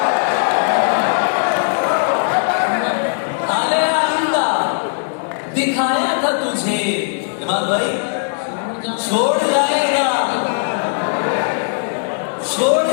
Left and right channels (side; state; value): right; silent; 67 dB below the other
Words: हाले आइंदा दिखाया था तुझे। इमाम भाई छोड़ जाएगा